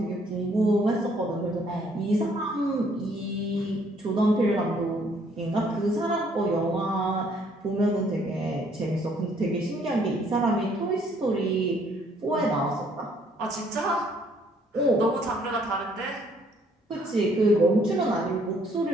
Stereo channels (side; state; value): both; normal; correlation 0.64